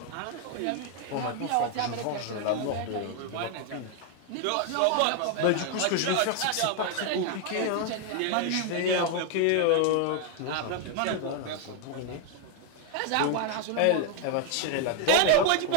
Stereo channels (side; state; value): both; different; correlation 0.00